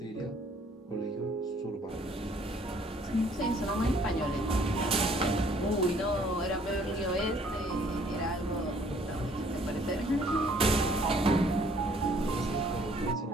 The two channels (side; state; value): both; normal; correlation 0.61